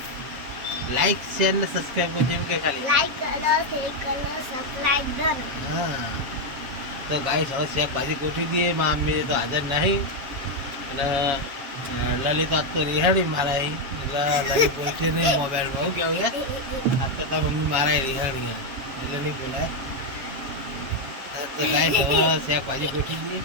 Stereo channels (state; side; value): late; left; 7.5 ms